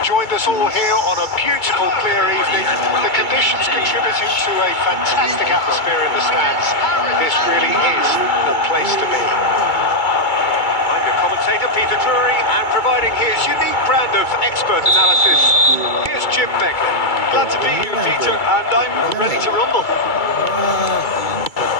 joined us all here on a beautiful, clear evening. The conditions contributing to a fantastic atmosphere in the stands. This really is the place to be. I'm your commentator, Peter Drury, and providing his unique brand of expert analysis, here's Jim Begley. Glad to be here, Peter, and I'm ready to rumble.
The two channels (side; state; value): right; late; 2.3 ms